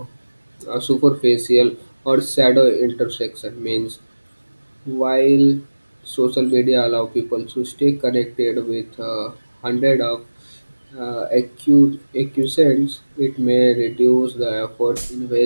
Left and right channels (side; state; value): both; inverted; correlation -1.00